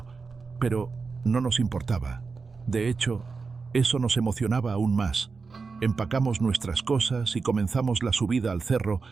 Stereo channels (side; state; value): left; quieter; 4.6 dB